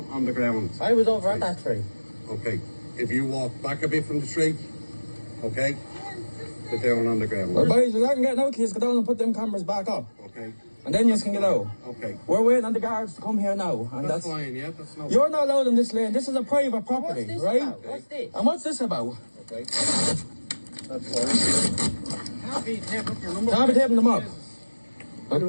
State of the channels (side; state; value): both; inverted; correlation -1.00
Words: on the ground. I was over at that tree. Okay, if you walk back a bit from the tree, okay, they're down on the ground. Well, boys, I can get out, please go down and put them cameras back up. Okay. And then you can get out. Okay. We're waiting on the guards to come here now. And that's fine, yeah, that's no. You're not allowed in this lane. This is a private property, What's this right? about? What's this? And what's this about? Okay. That's fine. Can't be taping up your number. Can't be taping them up.